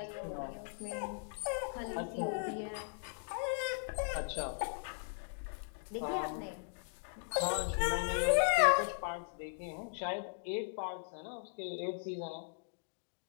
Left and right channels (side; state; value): right; silent; digital silence